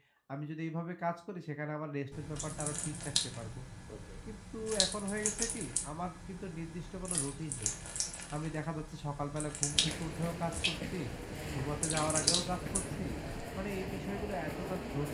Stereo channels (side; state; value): both; identical; correlation 1.00